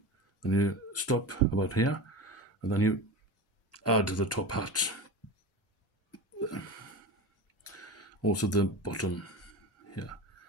Then you stop about here, and then you add the top hat. Also the bottom here,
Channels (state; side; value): normal; both; correlation 0.28